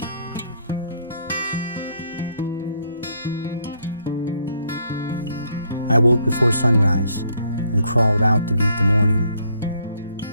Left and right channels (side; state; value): both; inverted; correlation -0.69